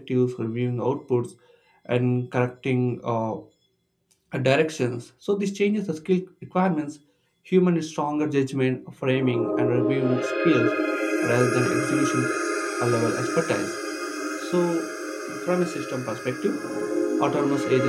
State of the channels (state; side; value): identical; both; correlation 1.00